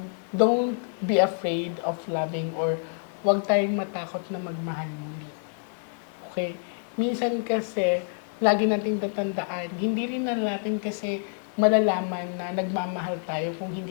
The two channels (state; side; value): silent; right; 60 dB below the other